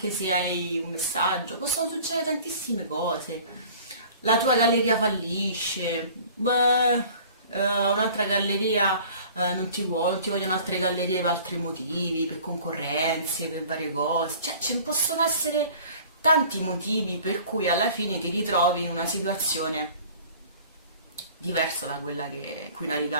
se hai un messaggio, possono succedere tantissime cose. La tua galleria fallisce, beh, un'altra galleria non ti vuole, non ti vogliono altre gallerie per altri motivi, per concorrenze, per varie cose. Cioè, ce ne possono essere tanti motivi per cui alla fine ti ritrovi in una situazione diversa da quella in cui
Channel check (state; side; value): inverted; both; correlation -0.47